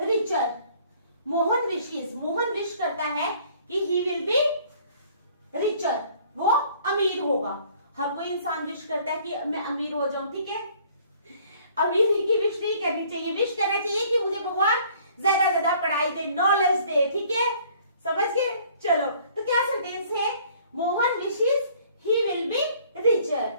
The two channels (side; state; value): both; inverted; correlation -0.57